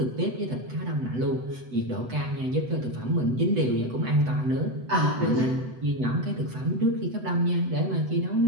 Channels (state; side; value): late; left; 8.0 ms